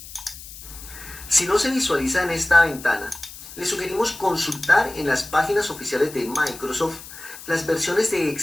Si no se visualiza en esta ventana, le sugerimos consultar en las páginas oficiales de Microsoft las versiones de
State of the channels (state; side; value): noise; left; hiss, 15 dB below the sound